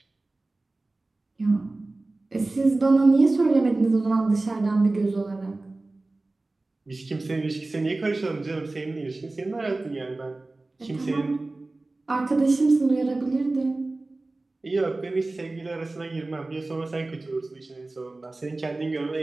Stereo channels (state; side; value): quieter; left; 3.1 dB